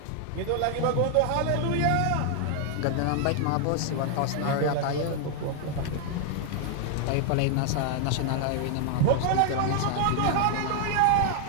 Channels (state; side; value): different; both; correlation 0.00